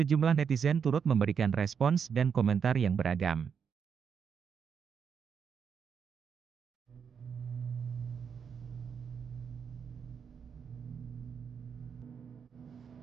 netizen turut memberikan respons dan komentar yang beragam.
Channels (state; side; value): quieter; left; 6.8 dB